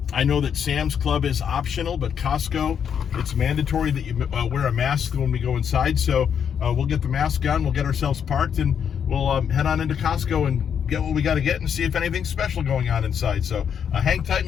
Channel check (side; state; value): right; quieter; 7.9 dB